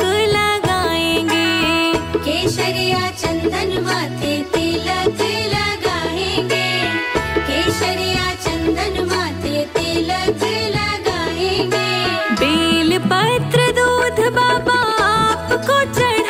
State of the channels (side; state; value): both; identical; correlation 1.00